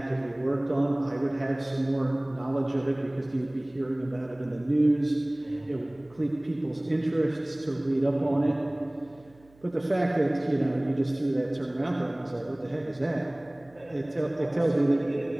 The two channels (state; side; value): noise; right; hum, 29 dB below the sound